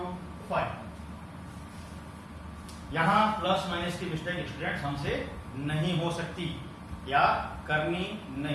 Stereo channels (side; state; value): both; identical; correlation 1.00